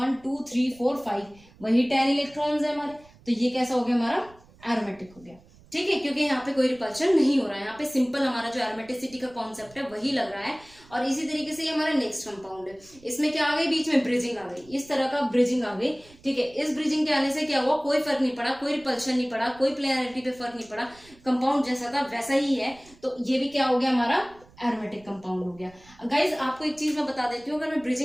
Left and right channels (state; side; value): noise; right; rumble, 26 dB below the sound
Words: 2 3 4 5 वही 10 इलेक्ट्रॉन्स है हमारे, तो ये कैसा हो गया, हमारा एरोमेटिक हो गया, ठीक है, क्योंकि यहाँ पे कोई रिपल्शन नहीं हो रहा है, यहाँ पे सिंपल हमारा जो एरोमेटिसिटी का कॉन्सेप्ट है वही लग रहा है। और इसी तरीके से ये हमारा नेक्स्ट कंपाउंड है, इसमें क्या आ गई, बीच में ब्रिजिंग आ गई, इस तरह का ब्रिजिंग आ गई, ठीक है। इस ब्रिजिंग के आने से क्या हुआ, कोई फर्क नहीं पड़ा, कोई रिपल्शन नहीं पड़ा, कोई प्लेनैरिटी पे फर्क नहीं पड़ा, कंपाउंड जैसा था वैसा ही है। तो ये भी क्या हो गया, हमारा एरोमेटिक कंपाउंड हो गया। गाइज आपको एक चीज मैं बता देती हूँ, अगर मैं